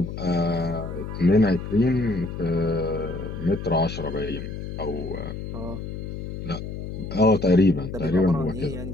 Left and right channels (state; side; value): noise; left; hum, 7 dB below the sound